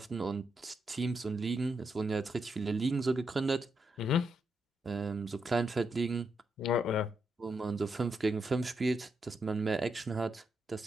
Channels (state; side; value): normal; both; correlation 0.81